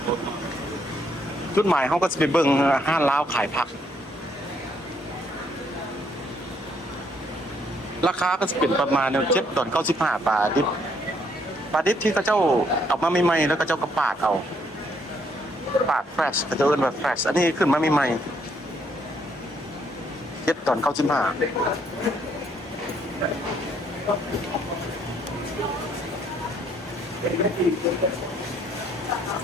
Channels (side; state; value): both; normal; correlation 0.70